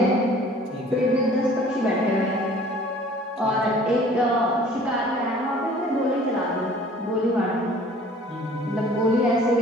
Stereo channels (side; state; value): both; normal; correlation 0.51